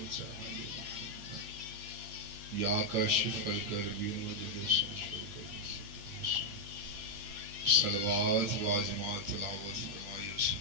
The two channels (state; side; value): late; left; 8.8 ms